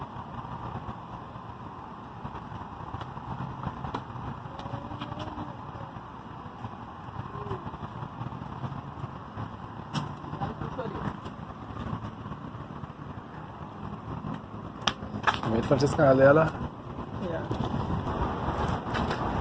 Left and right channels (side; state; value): both; identical; correlation 1.00